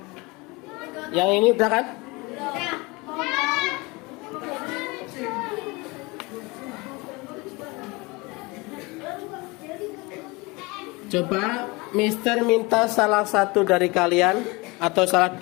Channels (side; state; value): right; quieter; 25.2 dB